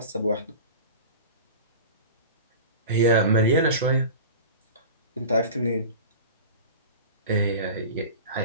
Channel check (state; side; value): inverted; both; correlation -0.34